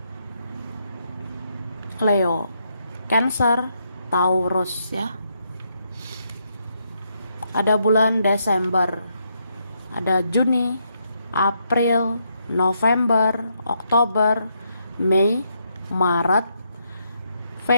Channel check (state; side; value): inverted; both; correlation -0.77